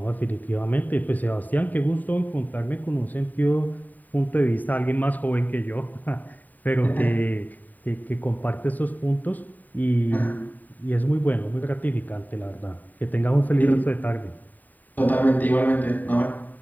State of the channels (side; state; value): right; late; 0.085 ms